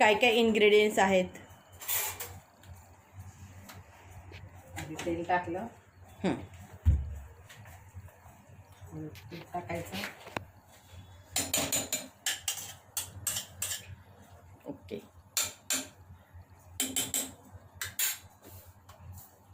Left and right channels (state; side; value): identical; both; correlation 1.00